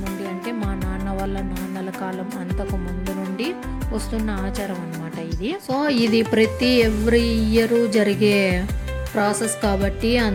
నుండి అంటే మా నాన్న వాళ్ళ నాన్నల కాలం అంతకు ముందు నుండి వస్తున్న ఆచారం అన్నమాట ఇది. సో ఇది ప్రతి ఎవ్రీ ఇయర్ జరిగే ప్రాసెస్ కాబట్టి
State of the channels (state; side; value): identical; both; correlation 1.00